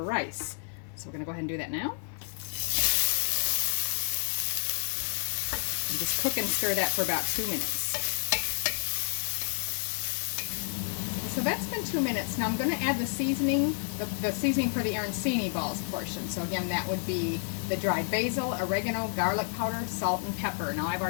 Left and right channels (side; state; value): right; silent; 58 dB below the other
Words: rice. So we're going to go ahead and do that now. And just cook and stir that for about 2 minutes. So that's been 2 minutes. Now I'm going to add the seasoning, the seasoning for the arancini balls portion. So again, that would be the dried basil, oregano, garlic powder, salt, and pepper. Now I've